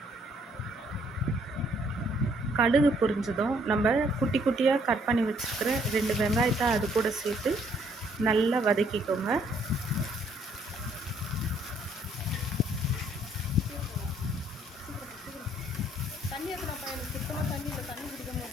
கடுகு பொரிஞ்சதும் நம்ம குட்டி குட்டியாக கட் பண்ணி வச்சுருக்கிற 2 வெங்காயத்தை அது கூட சேர்த்து நல்லா வதக்கிக்கோங்க.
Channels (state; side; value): normal; both; correlation 0.66